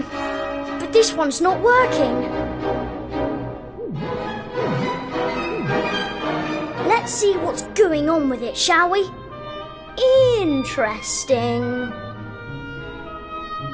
But this one's not working. Let's see what's going on with it, shall we? Interesting.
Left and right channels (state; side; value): identical; both; correlation 1.00